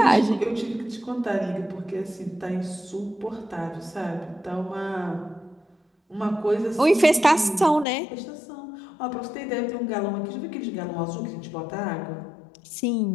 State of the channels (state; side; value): drops out; right; at 7.9 s